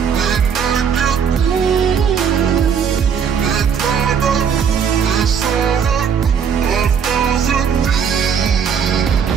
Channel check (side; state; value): left; quieter; 7.2 dB